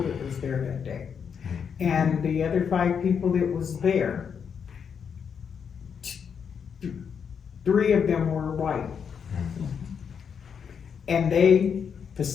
that was there that day. And the other 5 people that was there, 3 of them were white. And they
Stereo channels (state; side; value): quieter; right; 7.0 dB